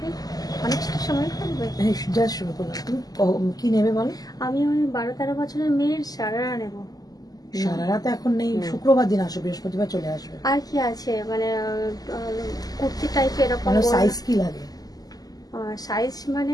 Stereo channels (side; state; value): right; late; 0.18 ms